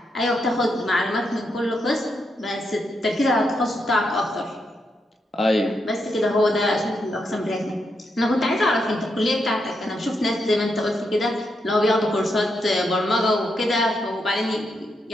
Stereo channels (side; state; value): both; normal; correlation 0.82